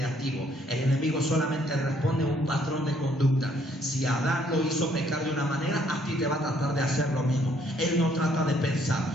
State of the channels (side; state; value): both; normal; correlation 0.66